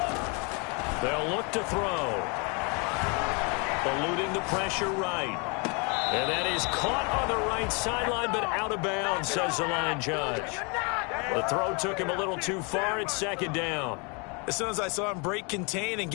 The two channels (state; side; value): quieter; right; 32.7 dB